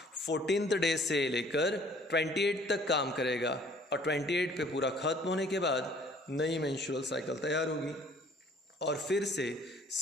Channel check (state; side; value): normal; both; correlation 0.56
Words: 14th डे से लेकर 28 तक काम करेगा और 28 पे पूरा खत्म होने के बाद नई मेंस्ट्रुअल साइकिल तैयार होगी और फिर से